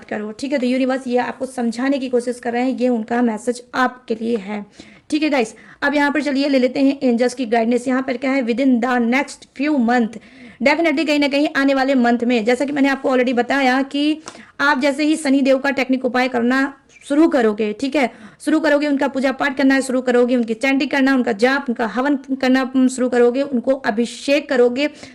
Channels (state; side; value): identical; both; correlation 1.00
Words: करो, ठीक है। तो यूनिवर्स ये आपको समझाने की कोशिश कर रहे हैं, ये उनका मैसेज आपके लिए है, ठीक है गाइस। अब यहाँ पर चलिए ले लेते हैं एंजल्स की गाइडेंस। यहाँ पर क्या है, within the next few month, definitely कहीं ना कहीं आने वाले मंथ में, जैसा कि मैंने आपको ऑलरेडी बताया कि आप जैसे ही शनि देव का टेक्निक उपाय करना शुरू करोगे, ठीक है, शुरू करोगे, उनका पूजा पाठ करना शुरू करोगे, उनकी चैंटिंग करना, उनका जाप, उनका हवन करना शुरू करोगे, उनको अभिषेक करोगे